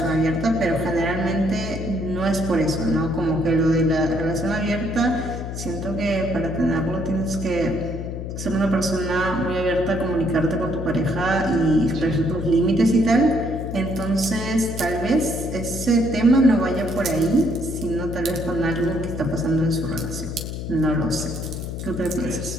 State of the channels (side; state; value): left; noise; hum, 6 dB below the sound